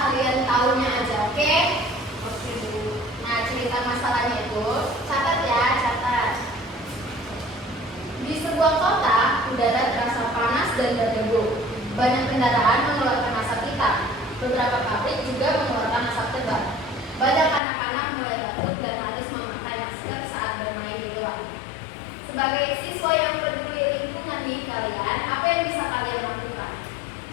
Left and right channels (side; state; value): right; drops out; at 17.6 s